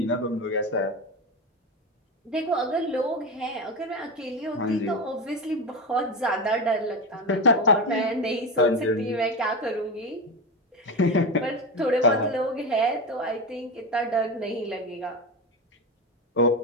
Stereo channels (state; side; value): normal; both; correlation 0.19